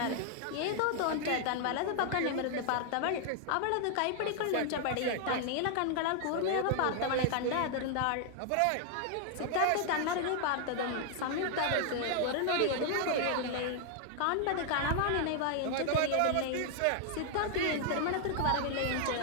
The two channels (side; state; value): both; different; correlation 0.00